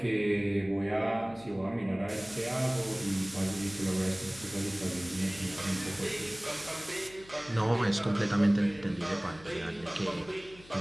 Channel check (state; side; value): noise; left; hum, 21 dB below the sound